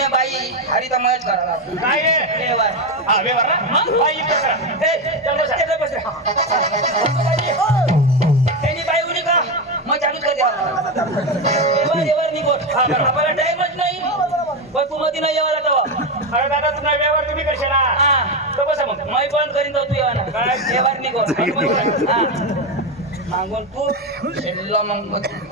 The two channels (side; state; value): both; normal; correlation 0.12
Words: बाई हरी तर मयच करा काय आहे व्यवहार हा व्यवहार ना बाई युद्ध करा चल बसा. त्यांनी बाई उडी का मग चालूच कर द्यावा व्यवहार निघोट हा, बरोबर. आपल्याला टाइमच नाही पण तू मध्ये नाही यावाला तेव्हा अरे दादा तुम्हाला व्यवहार तुम्ही करशाल हा तर बसा मग मै बंद करीन तो तू येवाना काय? व्यवहार निघोट हा मागून तू शेल्लो मग